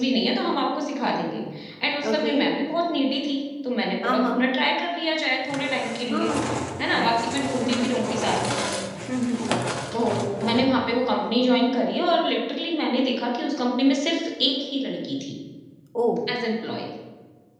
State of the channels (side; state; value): both; identical; correlation 1.00